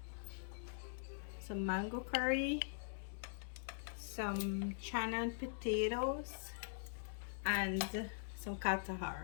some mango curry, some chana and potatoes, and some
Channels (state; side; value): silent; right; digital silence